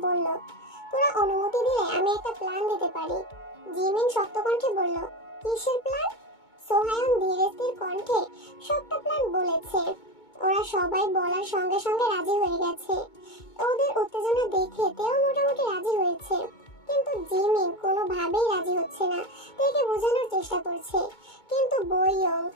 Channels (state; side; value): late; right; 2.2 ms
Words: বলল, তোরা অনুমতি দিলে আমি একটা প্ল্যান দিতে পারি। জিমিন শক্ত কণ্ঠে বলল, কিসের প্ল্যান? সোহায়ন ধীরে স্থির কণ্ঠে সবটা প্ল্যান বলেছে। ওরা সবাই বলার সঙ্গে সঙ্গে রাজি হয়ে গেছে। ওদের উত্তেজনা দেখে তেও মোটামুটি রাজি হয়েছে, কিন্তু জিমিন কোনোভাবেই রাজি হচ্ছে না। তেকে বোঝানোর চেষ্টা করছে, কিন্তু বইয়ং,